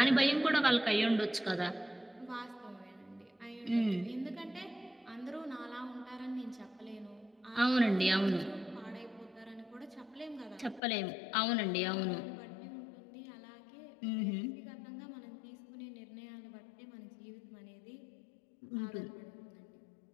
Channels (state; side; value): drops out; right; at 10.8 s